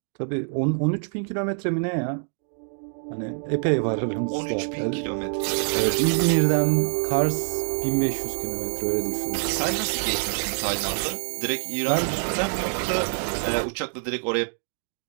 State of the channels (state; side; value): silent; left; digital silence